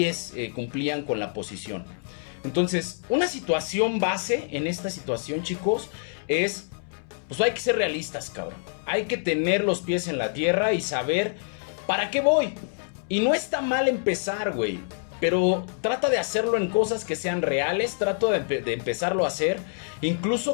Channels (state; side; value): silent; right; 61 dB below the other